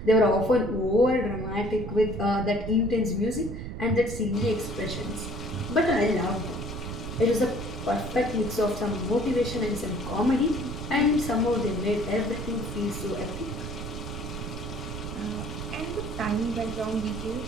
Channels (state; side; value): noise; right; rumble, 7 dB below the sound